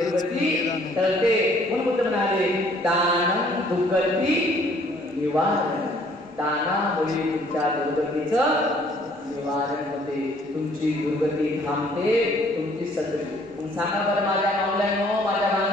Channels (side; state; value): both; normal; correlation 0.60